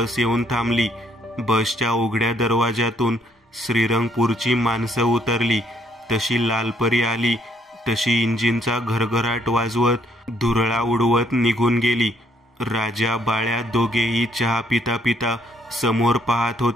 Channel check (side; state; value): both; normal; correlation 0.68